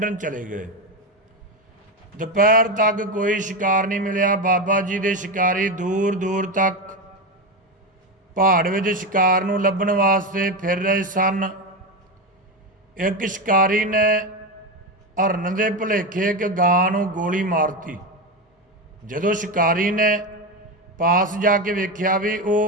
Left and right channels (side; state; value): both; normal; correlation 0.15